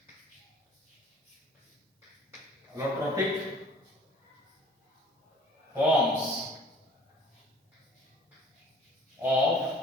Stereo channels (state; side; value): normal; both; correlation 0.51